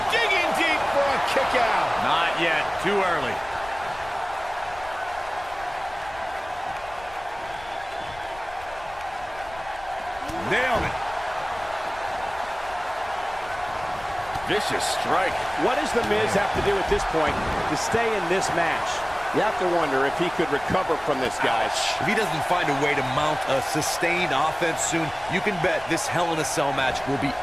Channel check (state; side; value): noise; left; rumble, 20 dB below the sound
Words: Digging deep for a kick out. Not yet. Too early. Nailed it. Vicious strike. What does The Miz have to do at this point to stay in this match? You have to wonder if he could recover from this, guys. If he doesn't find a way to mount a sustained offense soon, you can bet this Hell in a Cell match will be